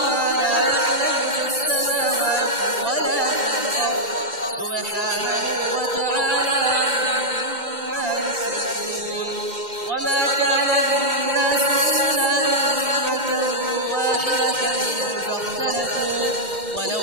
لا يعلم في السماوات ولا في الأرض سبحانه وتعالى عما يشركون وما كان الناس إلا أمة واحدة فاختلفوا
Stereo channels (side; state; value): left; late; 2.1 ms